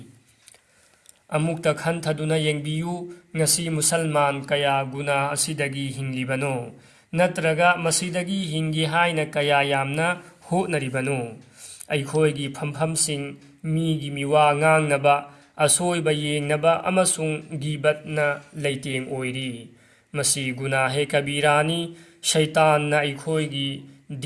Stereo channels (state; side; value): identical; both; correlation 1.00